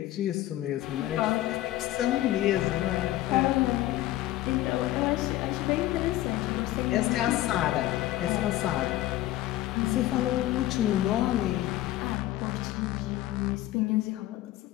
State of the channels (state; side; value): quieter; right; 15.2 dB